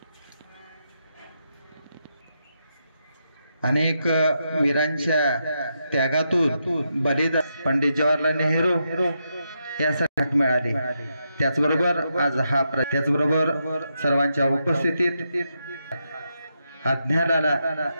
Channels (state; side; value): inverted; both; correlation -0.83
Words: अनेक वीरांच्या त्यागातून बलिदान पंडित जवाहरलाल नेहरू यासाठी मिळाले। त्याचबरोबर आज हा त्याचबरोबर सर्वांच्या उपस्थितीत